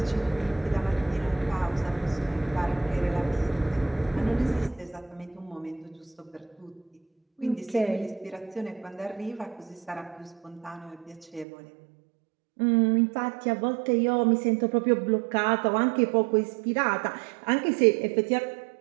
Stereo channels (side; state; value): left; drops out; at 11.5 s